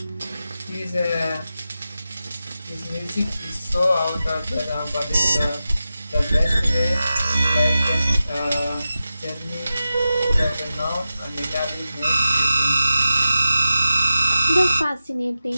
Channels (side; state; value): both; inverted; correlation -0.92